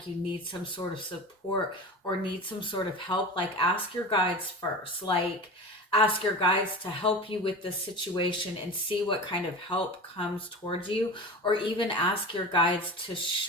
you need some sort of support or need some sort of help, like ask your guides first. Like ask your guides to help you with this situation and see what kind of help comes towards you, or even ask your guides to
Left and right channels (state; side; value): normal; both; correlation 0.31